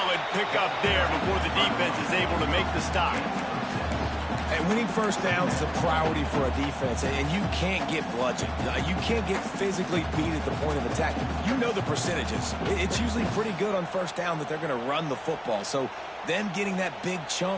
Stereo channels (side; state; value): both; identical; correlation 1.00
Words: pickup there before the defense is able to make the stop. And winning first downs is a priority for a defense, and you can't get bludgeoned. You can't get physically beat at the point of attack. You know the percentages. It's usually pretty good on first down that they're going to run the football. So them getting that big